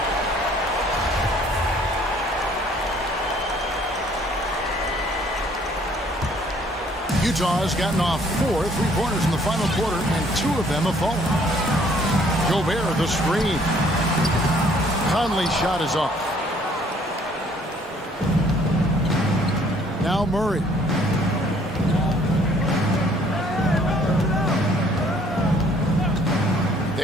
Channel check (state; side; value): normal; both; correlation 0.60